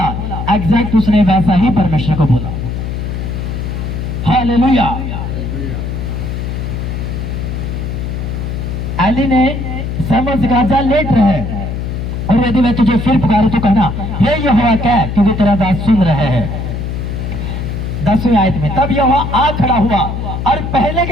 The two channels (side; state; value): left; noise; hum, 4 dB below the sound